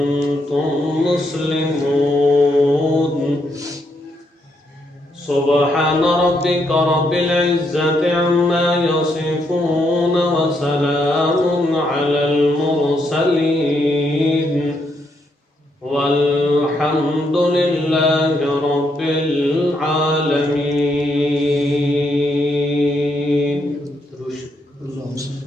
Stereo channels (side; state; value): both; normal; correlation 0.77